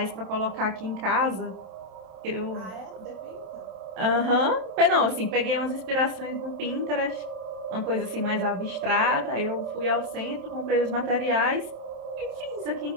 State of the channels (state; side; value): late; left; 27 ms